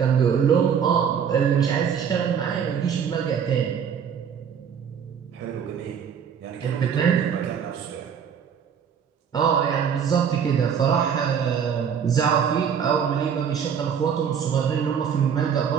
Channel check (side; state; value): left; quieter; 7.6 dB